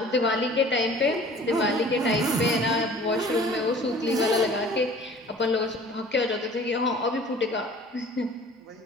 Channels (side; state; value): both; normal; correlation 0.48